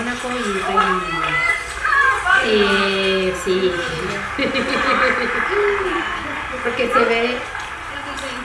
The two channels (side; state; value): both; identical; correlation 1.00